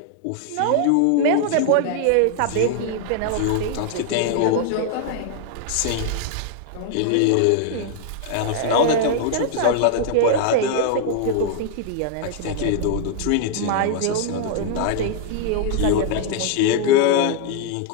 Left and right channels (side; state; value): both; different; correlation 0.00